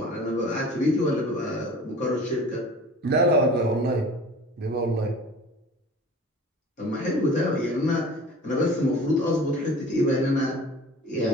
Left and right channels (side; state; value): both; normal; correlation 0.43